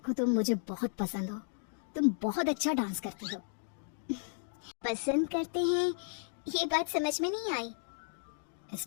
तुम मुझे बहुत पसंद हो, तुम बहुत अच्छा डांस करती हो। पसंद करते हैं, ये बात समझ में नहीं आई।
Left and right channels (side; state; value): right; silent; digital silence